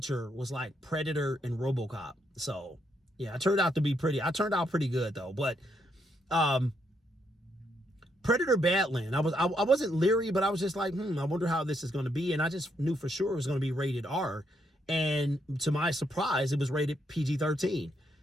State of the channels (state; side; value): normal; both; correlation 0.76